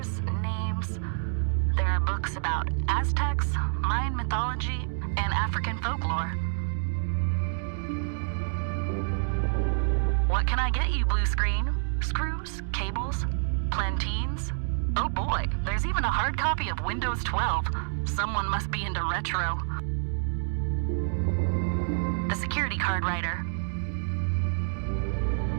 names. There are books about Aztecs, Mayan mythology, and African folklore. What can I get you, blue screen? Screws? Cables? Planteens? Oh boy, there's even a hard copy of Windows 12. Someone must be into retro. The security card writer.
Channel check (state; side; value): silent; left; digital silence